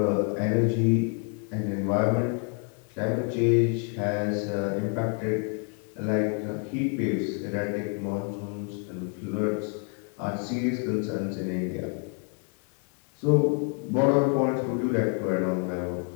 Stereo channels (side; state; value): right; quieter; 39.0 dB